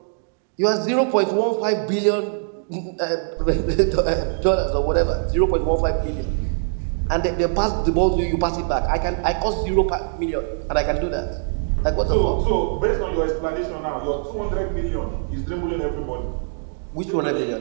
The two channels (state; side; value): silent; left; digital silence